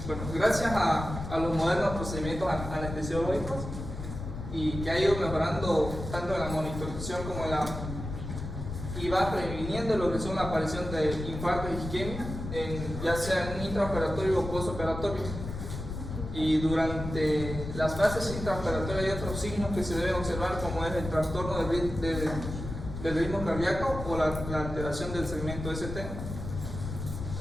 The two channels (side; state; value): left; noise; rumble, 7 dB below the sound